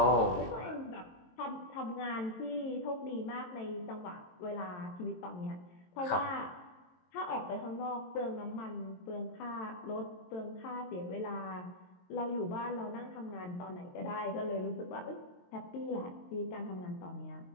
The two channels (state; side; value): late; right; 22 ms